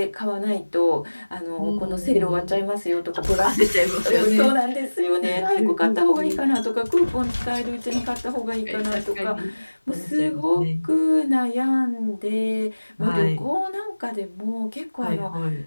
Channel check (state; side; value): inverted; both; correlation -1.00